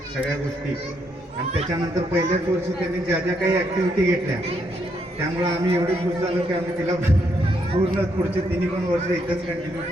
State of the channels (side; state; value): both; normal; correlation 0.76